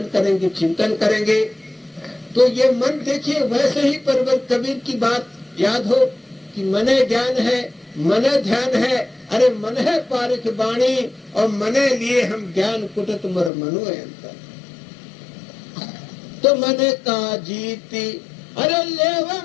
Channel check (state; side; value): drops out; right; at 13.5 s